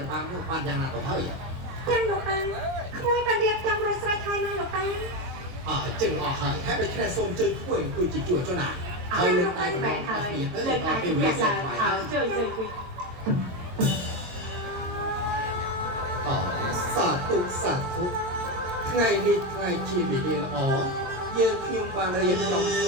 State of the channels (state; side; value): late; left; 22 ms